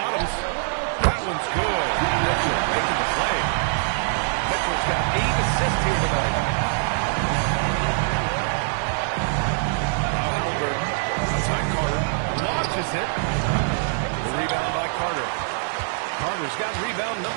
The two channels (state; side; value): silent; left; 63 dB below the other